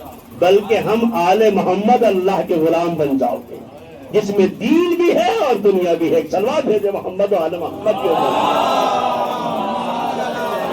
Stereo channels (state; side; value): identical; both; correlation 1.00